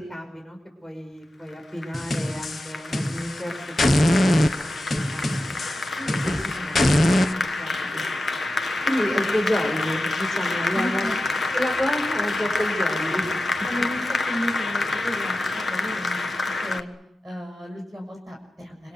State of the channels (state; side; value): normal; both; correlation 0.93